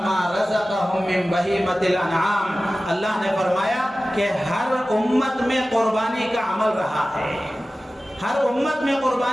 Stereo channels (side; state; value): both; normal; correlation 0.96